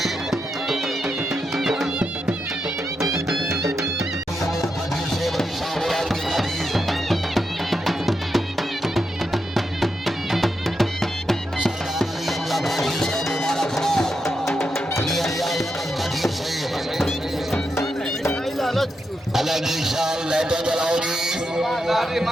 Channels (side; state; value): both; normal; correlation 0.85